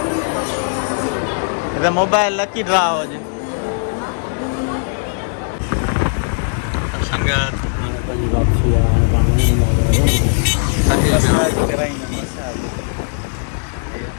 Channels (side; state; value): right; silent; 67 dB below the other